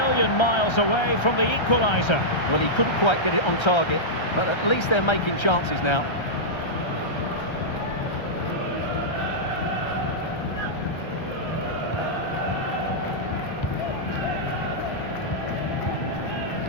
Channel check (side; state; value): right; late; 1.3 ms